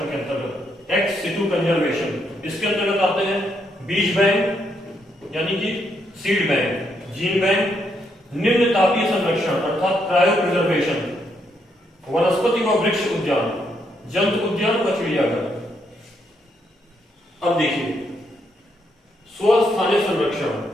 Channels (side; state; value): both; normal; correlation 0.76